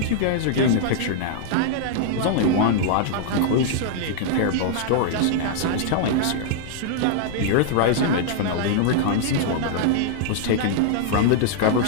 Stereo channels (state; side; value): different; both; correlation -0.01